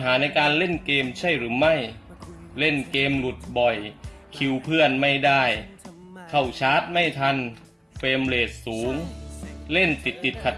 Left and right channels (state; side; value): identical; both; correlation 1.00